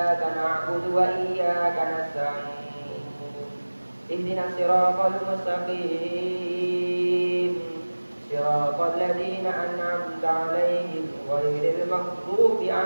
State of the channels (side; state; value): both; inverted; correlation -1.00